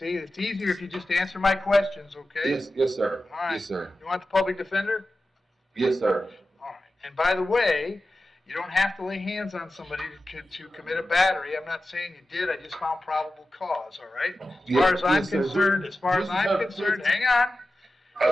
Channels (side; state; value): both; normal; correlation 0.93